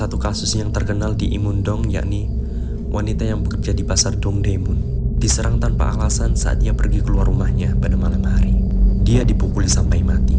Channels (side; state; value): both; identical; correlation 1.00